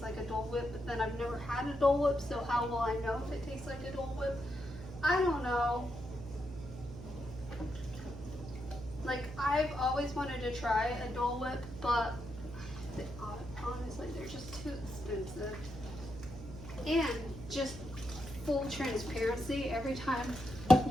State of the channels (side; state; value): right; noise; hum, 11 dB below the sound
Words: like a Dole Whip, but then I've never had a Dole Whip, so how will I know if it tastes like a Dole Whip? I don't know. Like, I've always wanted to try a Dole Whip, but honestly, they're just too expensive. And just full transparency, every time